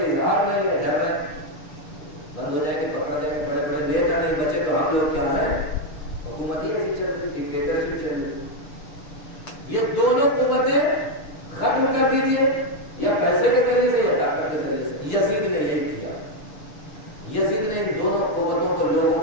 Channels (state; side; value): late; right; 6.7 ms